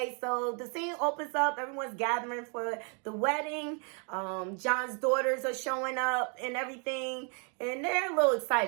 So the scene opens up. Everyone's gathering for the wedding. John's daughters are showing up and everything. And they're a little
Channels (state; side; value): quieter; left; 37.4 dB